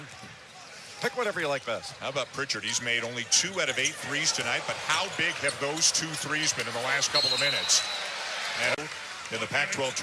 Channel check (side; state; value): both; identical; correlation 1.00